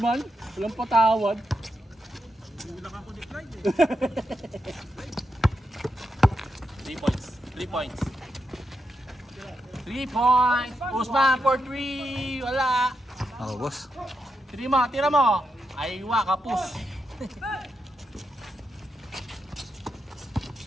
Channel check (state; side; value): normal; both; correlation 0.85